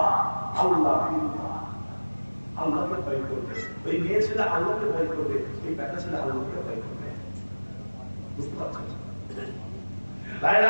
আল্লাহ। আল্লাহকে ভয় করবে, ওই মেয়ে ছেলে আল্লাহকে ভয় করবে, ওই বেটা ছেলে আল্লাহকে ভয় করবে। বুঝতে পারছেন?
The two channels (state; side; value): inverted; both; correlation -1.00